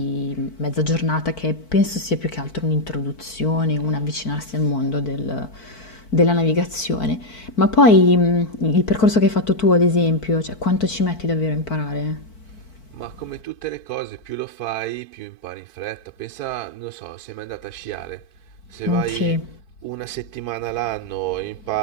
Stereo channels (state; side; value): late; right; 4.5 ms